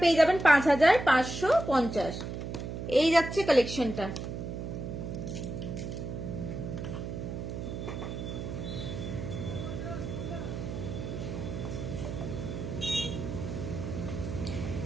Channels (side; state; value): right; noise; hum, 6 dB below the sound